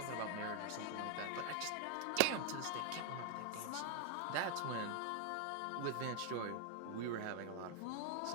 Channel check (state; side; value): different; both; correlation 0.00